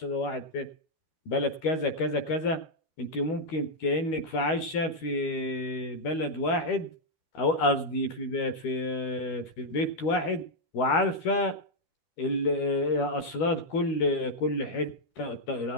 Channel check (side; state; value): right; late; 12 ms